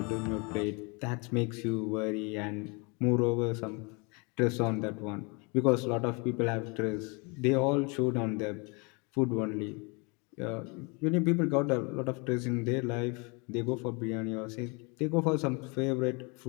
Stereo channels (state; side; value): quieter; right; 30.9 dB